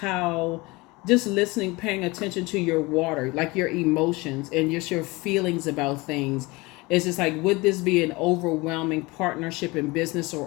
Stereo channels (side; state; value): right; quieter; 23.5 dB